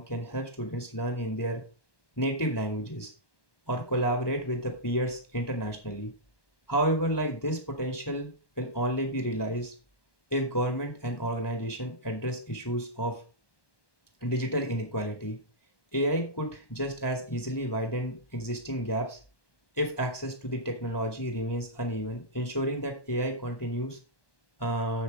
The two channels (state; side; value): late; right; 1.2 ms